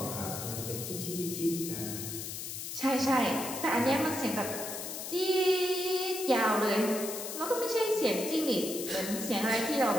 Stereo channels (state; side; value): noise; left; hiss, 6 dB below the sound